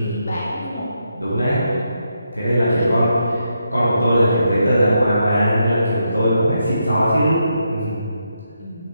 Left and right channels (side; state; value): both; inverted; correlation -0.82